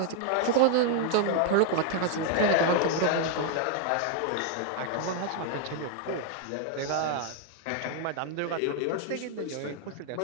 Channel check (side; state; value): both; different; correlation 0.00